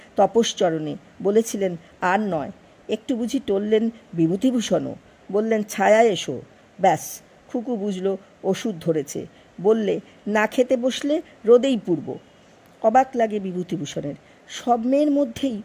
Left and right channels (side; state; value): both; identical; correlation 1.00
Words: তপশ্চরণে, বলেছিলেন আর নয়। একটু বুঝি টললেন বিভূতিভূষণও, বললেন ছায়া এসো। ব্যাস, খুকু বুঝল ওষুধ ধরেছে। বললে, না খেতে বসলে রোদেই পুড়ব। অবাক লাগে বিভূতিভূষণের। সব মেয়ের মধ্যেই